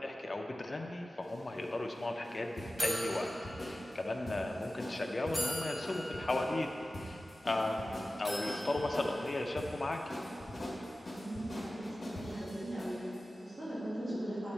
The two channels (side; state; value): both; normal; correlation 0.95